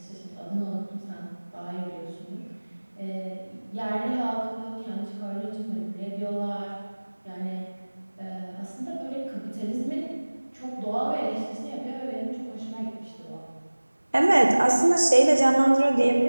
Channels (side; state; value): both; inverted; correlation -1.00